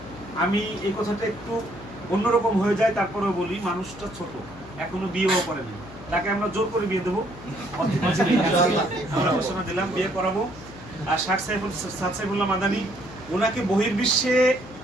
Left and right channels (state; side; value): noise; left; hum, 17 dB below the sound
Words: আমি এই কথাটা একটু অন্যরকম হয়ে যায়, তারপরেও বলি, মানুষটা ছোট, এখনো বিয়েও করেনি, তাকে আমরা জোর করে বিয়ে দেবো, আমরা ঘোষণা দিলাম বিয়ে করাবো। আর শায়েখ সাদ সাইফুল্লাহ মাদানী, ওনাকে বহির্বিশ্বে